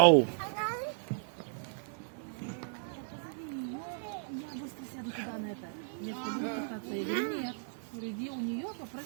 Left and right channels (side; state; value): left; silent; digital silence